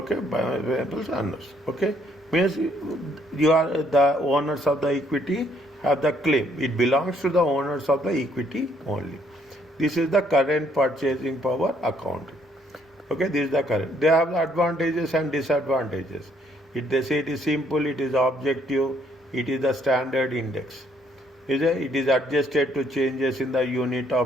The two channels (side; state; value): both; normal; correlation 0.67